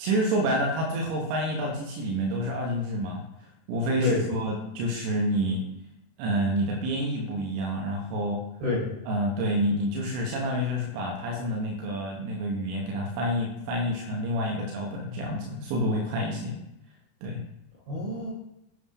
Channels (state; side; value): late; left; 32 ms